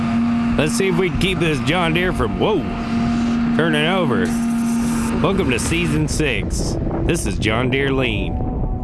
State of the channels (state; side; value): identical; both; correlation 1.00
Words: Let's see if we can keep this John Deere from, turning over. Welcome to Season 6. This is John Deere Lean.